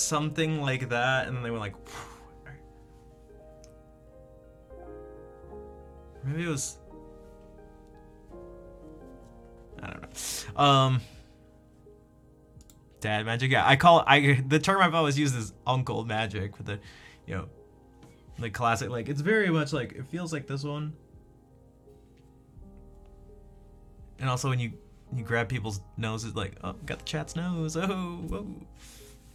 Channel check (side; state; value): both; identical; correlation 1.00